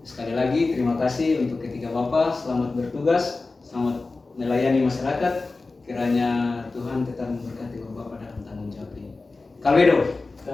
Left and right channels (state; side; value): quieter; right; 3.6 dB